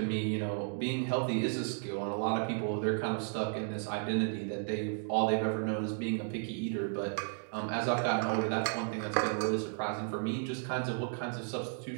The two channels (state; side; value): silent; left; 55 dB below the other